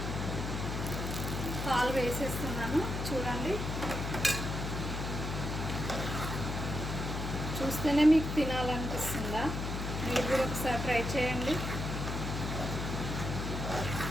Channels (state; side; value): noise; left; hum, 3 dB below the sound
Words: పాలు వేసేస్తున్నాను, చూడండి. చూస్తేనే మీకు తినాలనిపిస్తుందా? మీరు కూడా ఒకసారి ట్రై చేయండి.